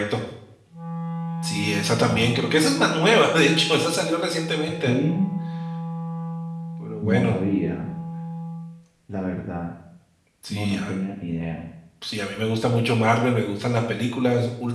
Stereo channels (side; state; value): both; identical; correlation 1.00